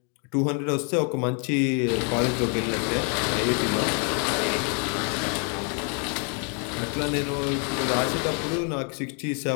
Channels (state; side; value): quieter; right; 39.3 dB